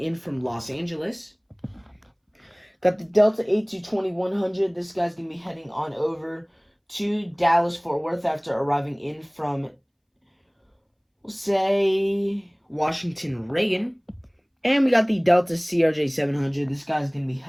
from Los Angeles. Got the Delta A220-100. This guy's going to be heading on over to Dallas-Fort Worth after arriving in from, we'll say, Washington Reagan. And we got the Delta CRJ-700. This guy's going to be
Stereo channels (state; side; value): identical; both; correlation 1.00